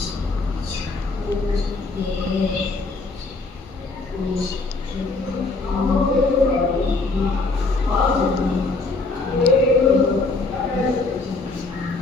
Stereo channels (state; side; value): quieter; right; 3.6 dB